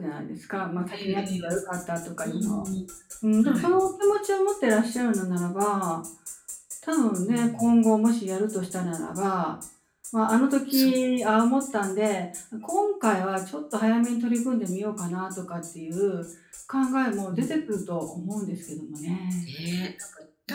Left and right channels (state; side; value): identical; both; correlation 1.00